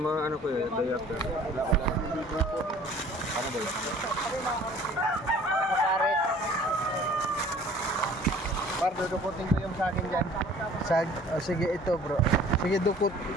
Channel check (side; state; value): both; normal; correlation 0.51